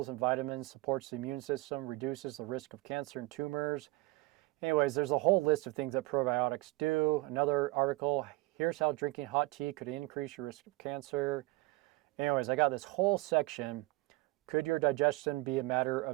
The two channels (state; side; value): quieter; left; 21.8 dB